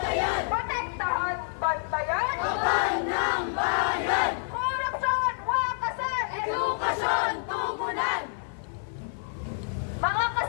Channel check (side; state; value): right; silent; 56 dB below the other